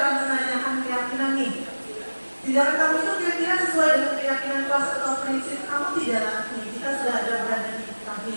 menanyakan keyakinan nih. Tindakan kamu itu kira-kira sesuai dengan keyakinan kelas atau prinsip kamu tidak? Nih, kita sudah ada berada di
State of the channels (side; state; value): both; inverted; correlation -1.00